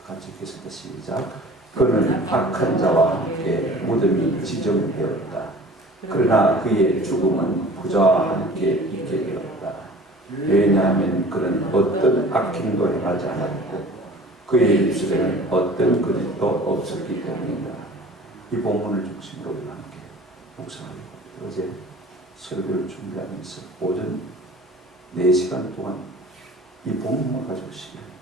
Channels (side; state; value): both; normal; correlation 0.44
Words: 같이 읽겠습니다. 시작. 그는 악한 자와 함께 무덤이 지정되었다. 그러나 그의 죽음은 부자와 함께 있게 되었다. 왜냐하면 그는 어떤 악행도 행하지 않았고 그의 입술에는 어떤 거짓도 없었기 때문이다. 이 본문을 중심으로 우리가 함께 묵상하려고 합니다. 어제 설교를 준비하면서 오전 4시간 동안 이 본문만 가지고 시간을